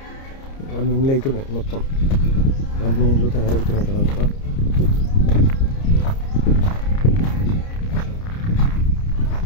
అన్ని ఇండ్లు అవుతున్నాయి, మొత్తం అన్ని ఇండ్లు తయారవుతున్నాయి ఇక్కడ అంతా.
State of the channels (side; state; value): right; late; 30 ms